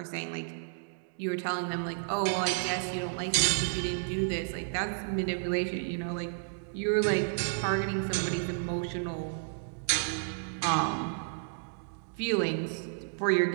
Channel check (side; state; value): left; silent; digital silence